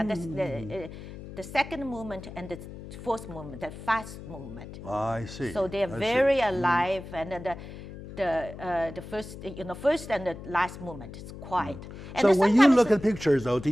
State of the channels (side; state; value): left; noise; hum, 13 dB below the sound